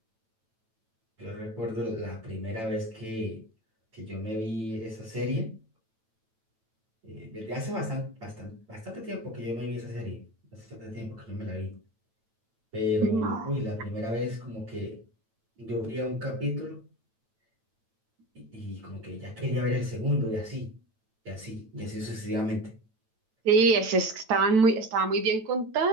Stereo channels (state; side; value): late; left; 9.0 ms